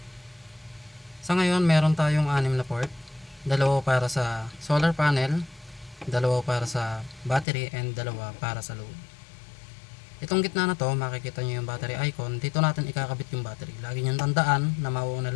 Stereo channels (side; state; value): right; drops out; at 7.5 s